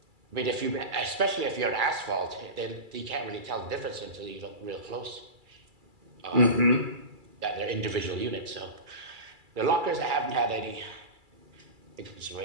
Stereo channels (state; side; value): late; left; 2.3 ms